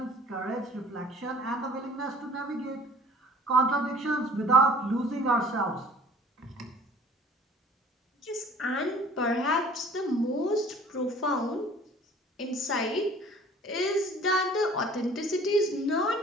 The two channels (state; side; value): normal; both; correlation 0.50